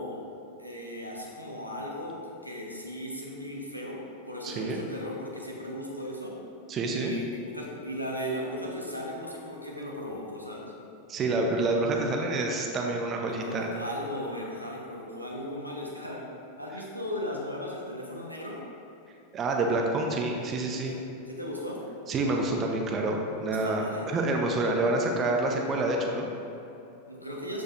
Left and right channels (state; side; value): normal; both; correlation 0.17